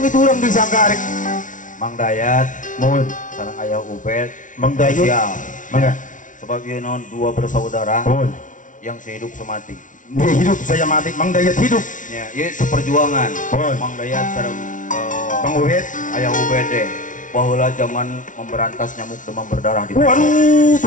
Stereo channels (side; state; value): right; late; 0.37 ms